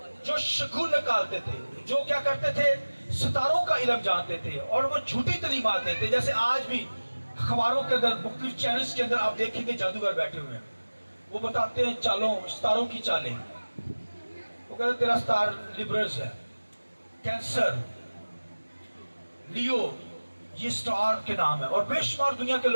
جو شگون نکالتے تھے, جو کیا کرتے تھے ستاروں کا علم جانتے تھے, اور وہ جھوٹی تعلیمات دیتے. جیسے آج بھی اخباروں کے اندر مختلف چینلز کے اندر آپ دیکھیں گے جادوگر بیٹھے ہوئے ہیں, وہ بتاتے ہیں چالوں, ستاروں کی چالیں. وہ کہتے ہیں تیرا ستار لیبرز ہے, کینسر, لیو, یہ سٹار کے نام ہے. اور بے شمار دنیا کے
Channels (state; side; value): inverted; both; correlation -1.00